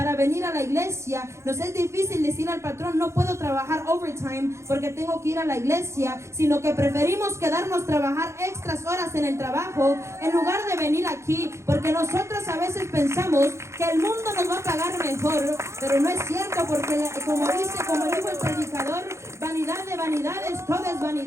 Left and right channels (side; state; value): left; late; 0.14 ms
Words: venir a la iglesia. Nos es difícil decir al patrón, no puedo trabajar overtime porque tengo que ir a la iglesia, sino que preferimos quedarnos trabajar extras horas en el trabajo en lugar de venir aquí, porque nosotros a veces pensamos que el mundo nos va a pagar mejor, pero no es cierto, porque como dijo el predicador, vanidad de vanidades, todo es